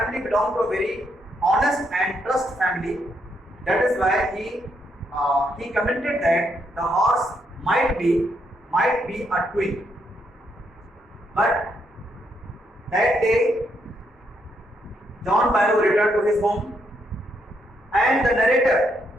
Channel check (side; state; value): both; normal; correlation 0.77